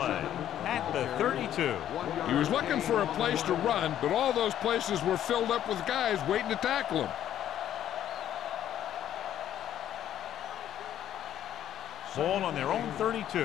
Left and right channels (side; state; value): right; quieter; 11.2 dB